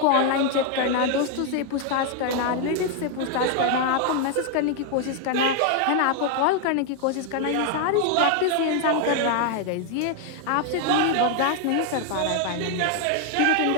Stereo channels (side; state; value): both; different; correlation 0.01